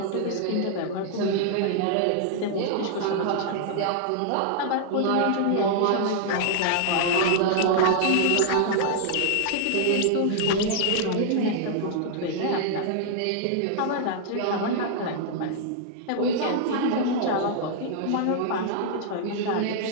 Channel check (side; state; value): both; different; correlation -0.01